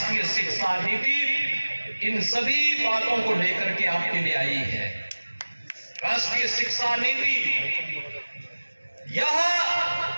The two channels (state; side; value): inverted; both; correlation -1.00